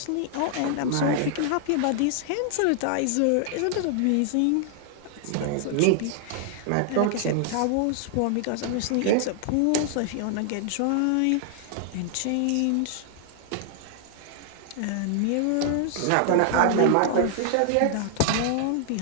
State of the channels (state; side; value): different; both; correlation 0.00